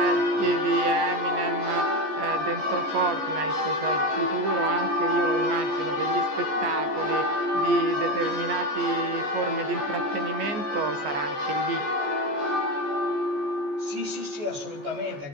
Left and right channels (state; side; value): late; left; 14 ms